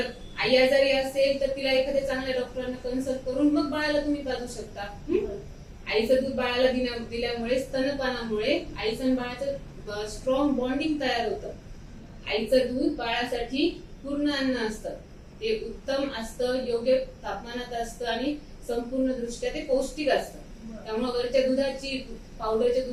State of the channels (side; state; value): both; identical; correlation 1.00